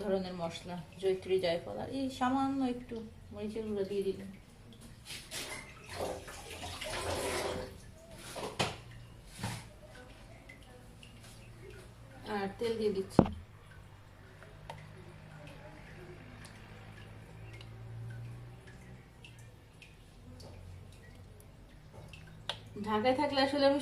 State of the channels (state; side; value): identical; both; correlation 1.00